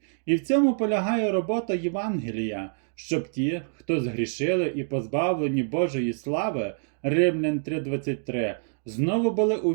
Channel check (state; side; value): silent; left; 61 dB below the other